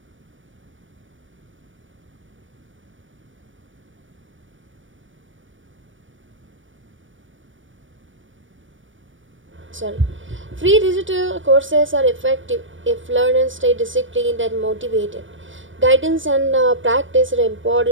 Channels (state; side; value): late; left; 0.56 ms